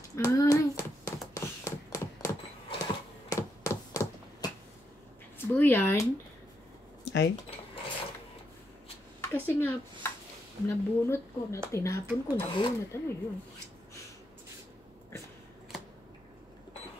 Ay. Buyan. Ay, Kasi nga, nabunot ko, tinapon ko, nabunot. Ano yun?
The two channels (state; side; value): normal; both; correlation 0.80